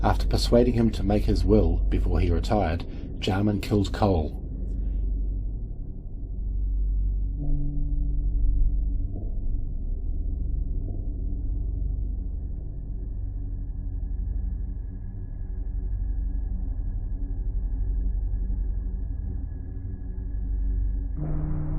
After persuading him to make his will before he retired, Jarman killed Cole.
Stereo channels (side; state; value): both; identical; correlation 1.00